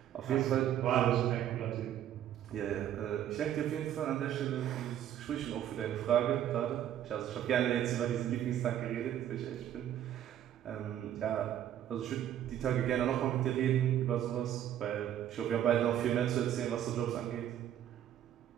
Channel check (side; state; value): left; quieter; 10.9 dB